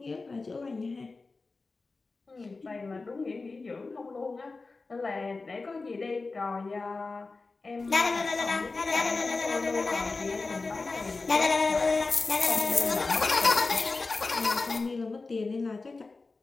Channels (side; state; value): right; quieter; 3.8 dB